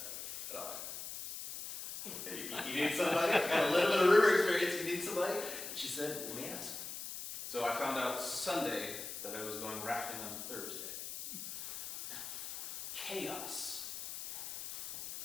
You need somebody? I got a little bit of river experience. You need somebody? And she said, let me ask. So I found out Sunday that I was going rafting on Thursday. Chaos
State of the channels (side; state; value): left; noise; hiss, 7 dB below the sound